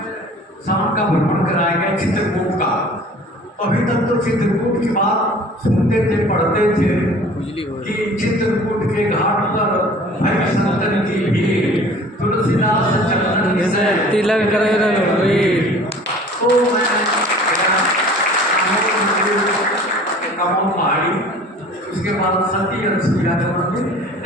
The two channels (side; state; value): both; normal; correlation 0.47